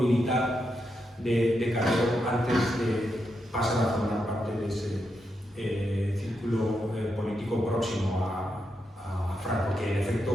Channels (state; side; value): normal; both; correlation 0.84